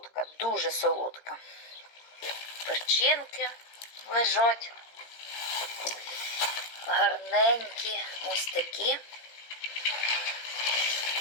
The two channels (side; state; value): right; late; 18 ms